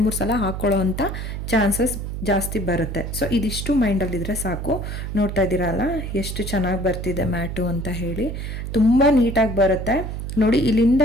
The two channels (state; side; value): noise; right; hum, 5 dB below the sound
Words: ಸಲ ಹಾಕ್ಕೊಳ್ಳೋ ಅಂಥ ಚಾನ್ಸಸ್ ಜಾಸ್ತಿ ಬರುತ್ತೆ. ಸೊ ಇದಿಷ್ಟು ಮೈಂಡಲ್ಲಿದ್ದರೆ ಸಾಕು. ನೋಡ್ತಾ ಇದ್ದೀರಲ್ಲ ಎಷ್ಟು ಚೆನ್ನಾಗಿ ಬರ್ತಿದೆ ಮ್ಯಾಟು ಅಂತ ಹೇಳಿ, ತುಂಬ ನೀಟಾಗಿ ಬರುತ್ತೆ ನೋಡಿ. ಇಲ್ಲಿಂದ